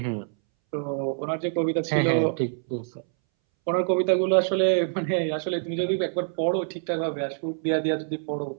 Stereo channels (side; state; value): left; silent; 61 dB below the other